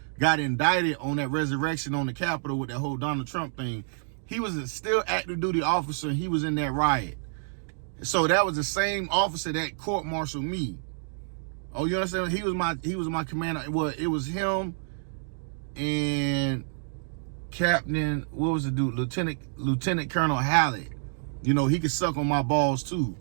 got indicted on that resurrection on the Capitol with that whole Donald Trump thing. He was a still active duty officer and he was in that riot. So that was the same officer that court-martialed me. Oh, you understand? He was my commander. Well, it was him and Captain, what was the dude? Lieutenant Colonel Hallett. You know, he could suck on my balls too.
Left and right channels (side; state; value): left; silent; digital silence